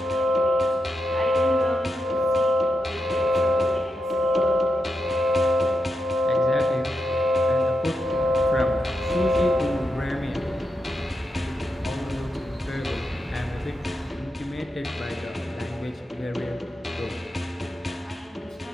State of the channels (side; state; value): both; normal; correlation 0.85